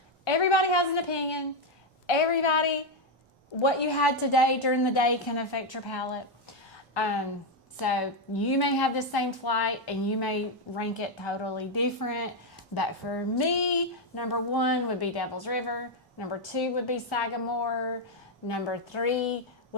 everybody has an opinion. What you had today during the day can affect your palate. So you may have the same flight, and you may rank it totally different. But for me, number one would be Devil's River. Number two would be Sagamore. Number three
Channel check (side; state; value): both; normal; correlation 0.04